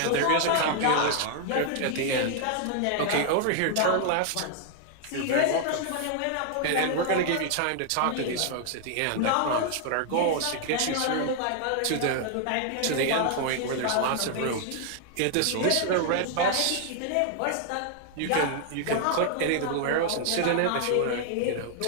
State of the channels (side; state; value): both; different; correlation 0.00